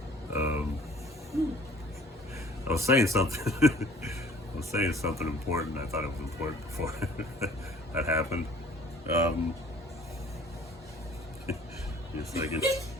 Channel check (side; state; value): both; normal; correlation 0.53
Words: I was saying something. I was saying something important. I thought it was important before that happened. Just like